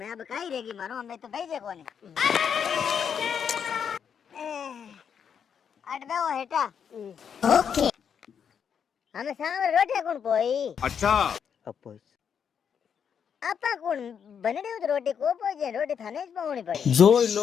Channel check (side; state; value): right; quieter; 7.5 dB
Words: अब कही रहेगी मारो हमें तो भेजे कोनी अट बेवो हेटा ओके हमें सामने रोटी कौन पोई अपोज आपा कौन बनड़ी उत रोटी को पोई जे रोटी थाने ज पावनी पड़ी